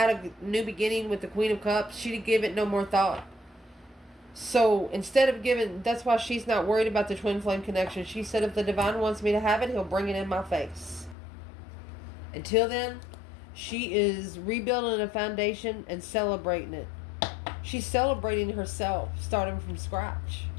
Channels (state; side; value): drops out; right; at 11.2 s